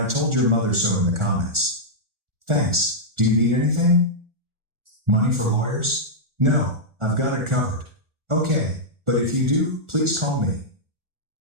told your mother so in the comments. Thanks. Do you need anything? Money for lawyers? No, I've got it covered. Okay, but if you do, please call me.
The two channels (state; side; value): late; left; 1.4 ms